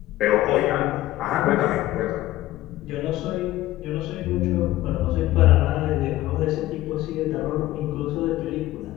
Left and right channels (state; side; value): quieter; right; 15.7 dB